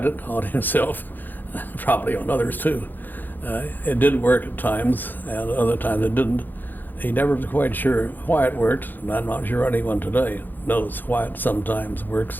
it on himself, probably on others too. It did work at times, and other times it didn't. He never was quite sure why it worked, and I'm not sure anyone today knows why it sometimes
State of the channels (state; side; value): late; right; 0.088 ms